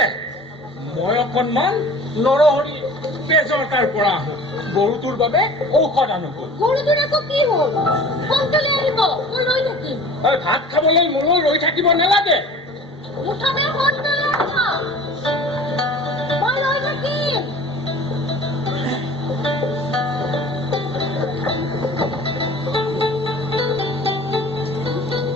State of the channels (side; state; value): both; normal; correlation 0.43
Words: মই অকণমান নৰহৰি তেজৰ তাৰ পৰা আহোঁ। গৰুটোৰ বাবে ঔষধ আনোগৈ। গৰুটোৰ আকৌ কি হ'ল? সোনকালে আহিব, মই ৰৈ থাকিম। ভাত খাবলৈ মোলৈ ৰৈ থাকিব নালাগে। মুঠতে সোনকালে আহিব, মই ৰৈ থাকিম।